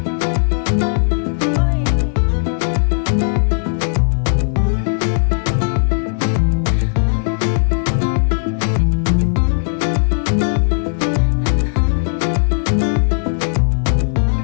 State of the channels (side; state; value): right; silent; 68 dB below the other